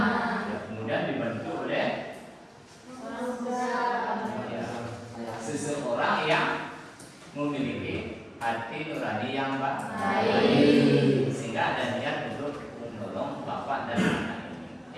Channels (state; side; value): identical; both; correlation 1.00